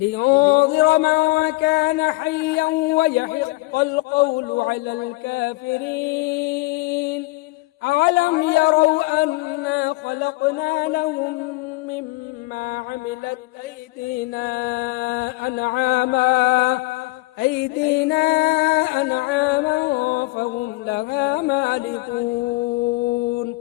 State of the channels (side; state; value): right; quieter; 22.2 dB